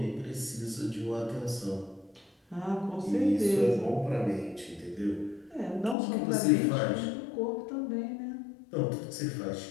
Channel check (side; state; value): right; drops out; at 6.0 s